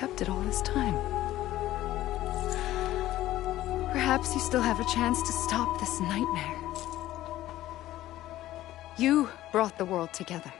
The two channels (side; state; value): right; quieter; 14.7 dB